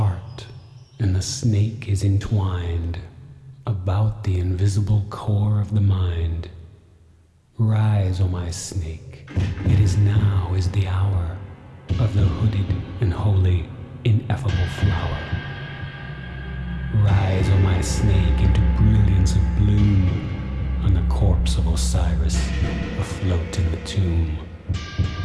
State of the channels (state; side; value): identical; both; correlation 1.00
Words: and the snake is entwined about the invisible core of the mind. Rise, O my snake, it is now is the hour of the hooded and holy, ineffable flower. Rise, O my snake, into brilliance of bloom on the corpse of Osiris, afloat in the tomb.